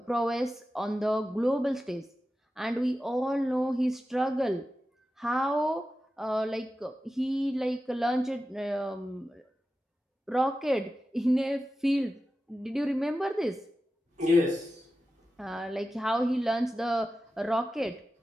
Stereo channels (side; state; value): both; normal; correlation 0.93